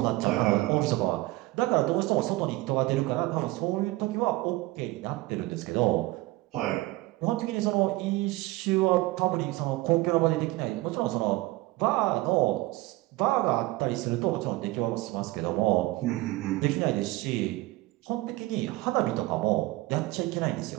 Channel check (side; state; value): left; quieter; 19.9 dB